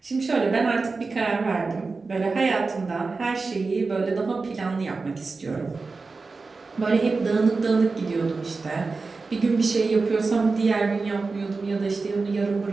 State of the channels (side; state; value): left; quieter; 4.1 dB